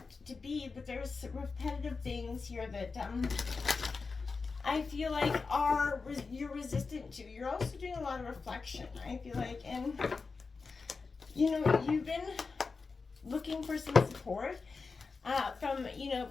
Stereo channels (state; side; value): quieter; right; 4.5 dB